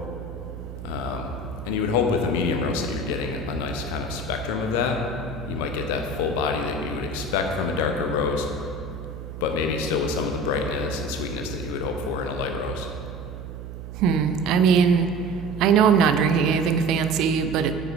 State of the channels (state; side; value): noise; right; hum, 11 dB below the sound